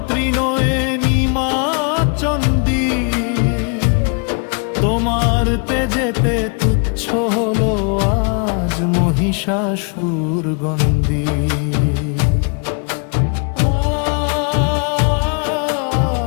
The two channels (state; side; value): quieter; right; 37.6 dB